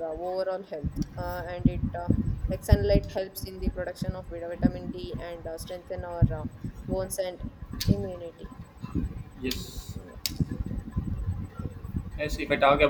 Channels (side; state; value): both; identical; correlation 1.00